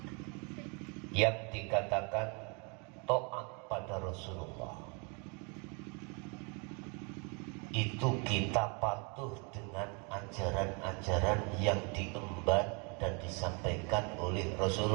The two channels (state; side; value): quieter; left; 33.2 dB